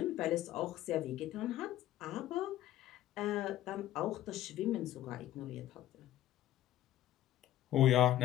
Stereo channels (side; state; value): right; quieter; 13.3 dB